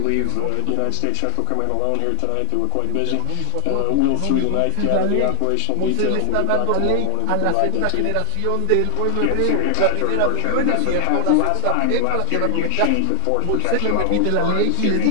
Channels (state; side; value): different; both; correlation 0.00